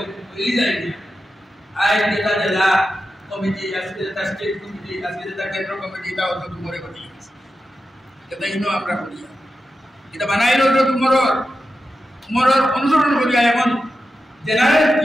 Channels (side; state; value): both; normal; correlation 0.91